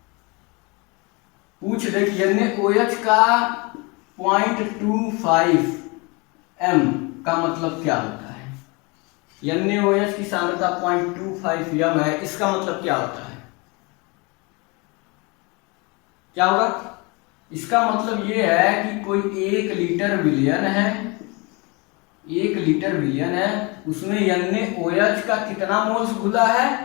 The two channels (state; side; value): quieter; right; 28.2 dB